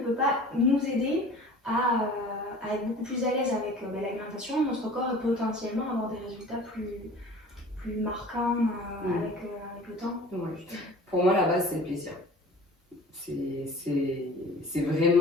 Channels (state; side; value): normal; both; correlation 0.44